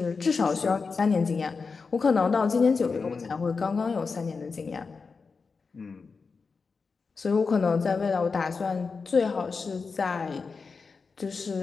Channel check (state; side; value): quieter; right; 4.8 dB